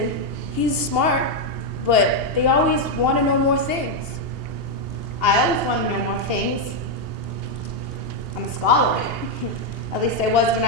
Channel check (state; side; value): late; left; 2.8 ms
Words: he's smart, but they always want to know more things. I always want to know more things. I'm a scholar. At least I was when